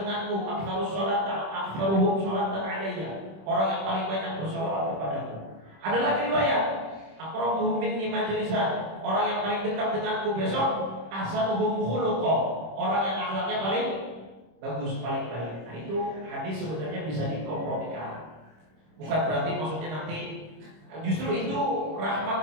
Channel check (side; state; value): left; late; 26 ms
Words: denganku, aktsaruhum sholatan alayya, orang yang paling banyak bersolawat kepadaku. Ada lagi riwayat, aqrabu minni majlisan, orang yang paling dekat denganku besok, ahsanuhum khuluqa, orang yang akhlaknya paling bagus, paling baik. Nah, itu hadis sebenarnya bisa dikompromikan. Bukan berarti maksudnya nanti, justru itu rahmat